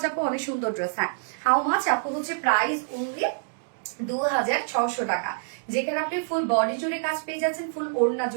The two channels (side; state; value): left; silent; digital silence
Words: আপু, অনেক সুন্দর ড্রেস। হ্যাঁ, হাউ মাচ আপু হচ্ছে প্রাইস অনলি 2600 টাকা, যেখানে আপনি ফুল বডি জুড়ে কাজ পেয়ে যাচ্ছেন, ফুল ওড়না